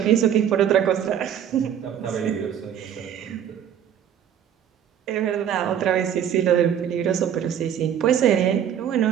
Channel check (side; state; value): left; quieter; 9.4 dB